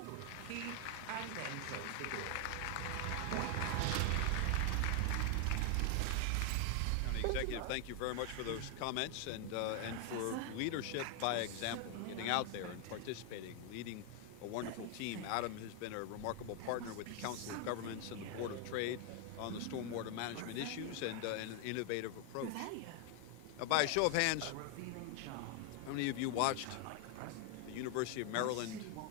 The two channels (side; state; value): both; different; correlation 0.00